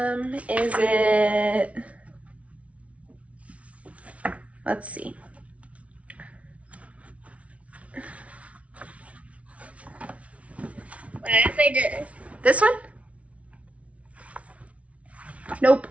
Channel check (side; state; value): left; late; 0.064 ms